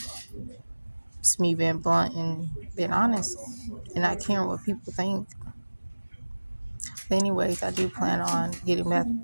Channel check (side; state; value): both; inverted; correlation -1.00